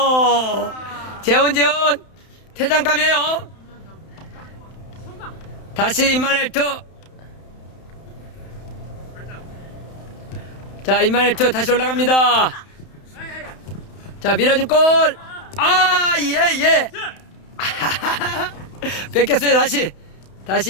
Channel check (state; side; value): late; right; 31 ms